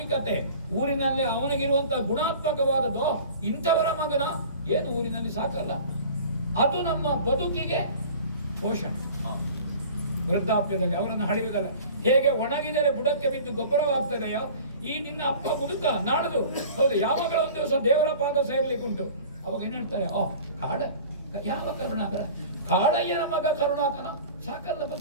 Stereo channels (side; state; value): both; inverted; correlation -0.43